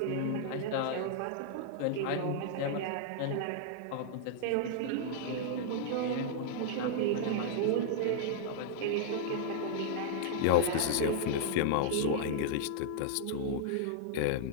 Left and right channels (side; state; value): both; different; correlation -0.01